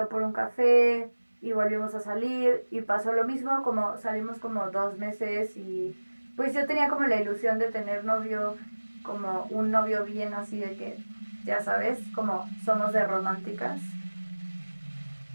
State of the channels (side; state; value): both; inverted; correlation -1.00